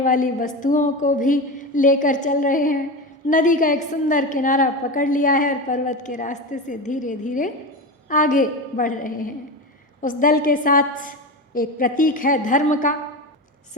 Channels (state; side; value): normal; both; correlation 0.22